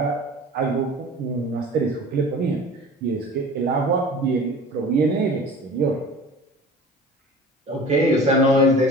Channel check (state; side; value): normal; both; correlation 0.41